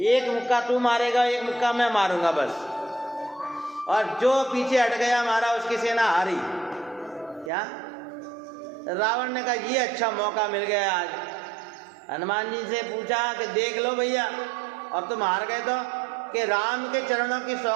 मुक्का तू मारेगा, एक मुक्का मैं मारूंगा बस, और जो पीछे हट गया मारा उसकी सेना हारी। क्या? रावण ने कहा ये अच्छा मौका मिल गया आज। हनुमान जी से पूछा कि देख लो भैया, अब तुम हार गए तो, कि राम के चरणों की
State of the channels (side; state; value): left; drops out; at 7.5 s